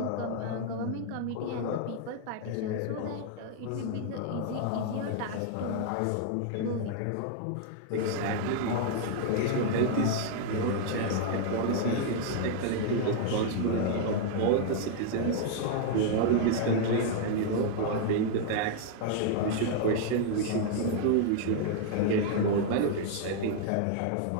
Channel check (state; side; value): different; both; correlation -0.01